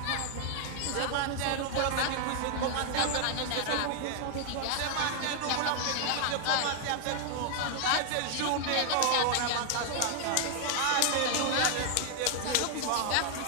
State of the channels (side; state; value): both; different; correlation 0.00